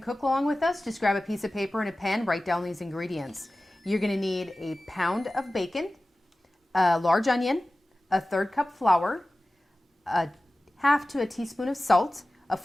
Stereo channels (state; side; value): normal; both; correlation 0.96